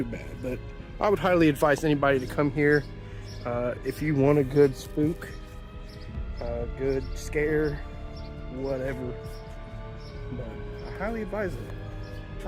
but I would highly advise anybody to come here if you want a good spook, a good scare, whatever. But I highly advise it.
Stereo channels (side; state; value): both; identical; correlation 1.00